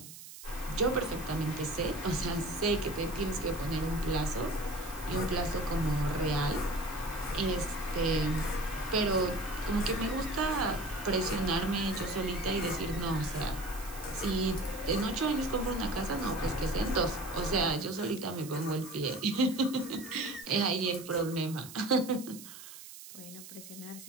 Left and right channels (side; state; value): right; noise; hiss, 15 dB below the sound